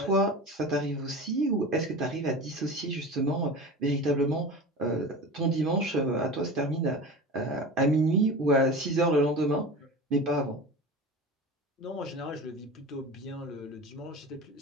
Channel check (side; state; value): both; normal; correlation 0.32